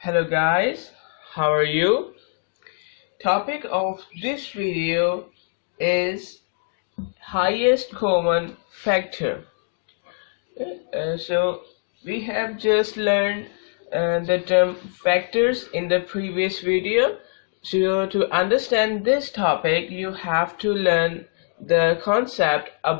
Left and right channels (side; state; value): right; silent; digital silence